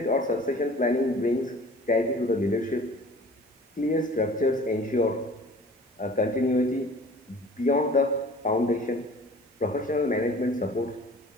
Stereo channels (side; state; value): both; normal; correlation 0.46